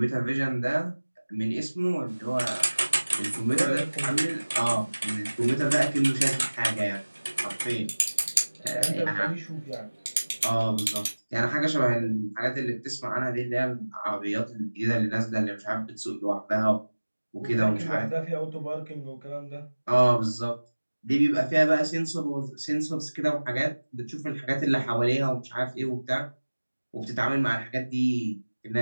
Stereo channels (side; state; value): both; inverted; correlation -1.00